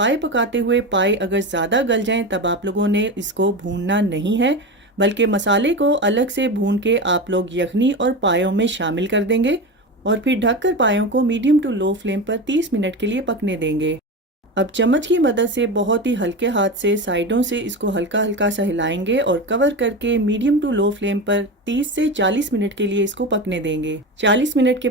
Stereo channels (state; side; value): normal; both; correlation 0.22